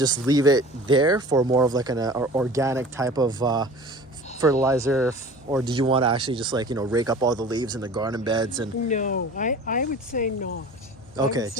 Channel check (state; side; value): normal; both; correlation 0.41